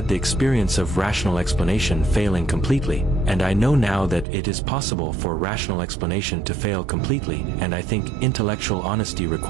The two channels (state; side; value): drops out; left; at 4.2 s